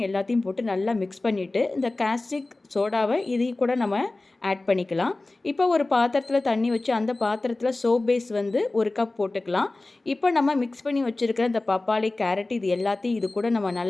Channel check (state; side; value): quieter; right; 3.0 dB